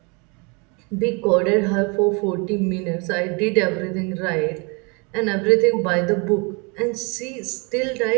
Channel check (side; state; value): left; quieter; 31.7 dB